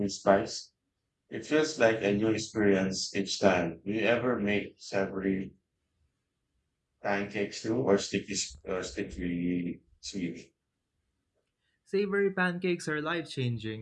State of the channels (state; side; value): identical; both; correlation 1.00